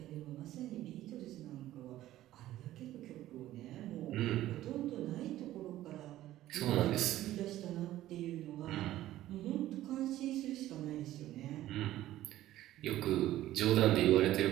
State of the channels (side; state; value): left; quieter; 14.3 dB